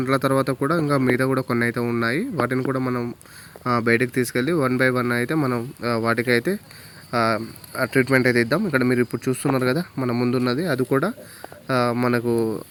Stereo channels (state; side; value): identical; both; correlation 1.00